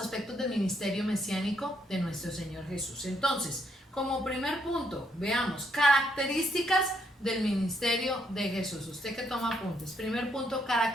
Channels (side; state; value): both; normal; correlation 0.74